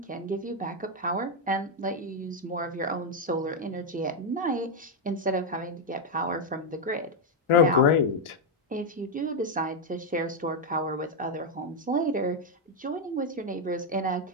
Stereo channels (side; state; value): both; normal; correlation 0.01